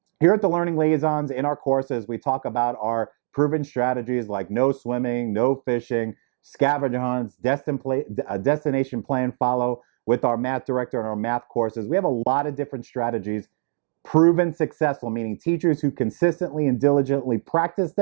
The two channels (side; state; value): left; silent; digital silence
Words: here at the Learning Liaisons, in our courses, we talk about our proven strategies like no swimming, no fishing, scavenger hunts, destination plan follow with our math director and our math courses. We have a lot of different strategies, proven successful, meaning teachers who consistently and diligently practice